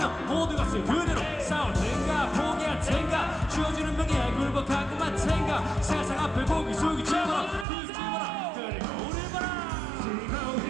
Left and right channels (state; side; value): drops out; left; at 7.7 s